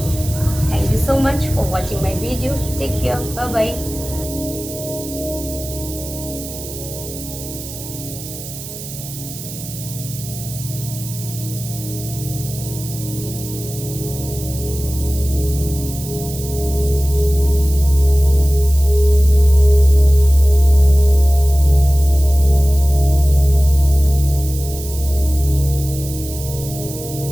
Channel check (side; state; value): right; noise; hiss, 12 dB below the sound